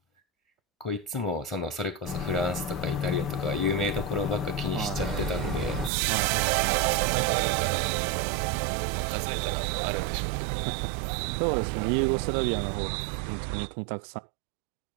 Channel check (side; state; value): left; drops out; at 5.9 s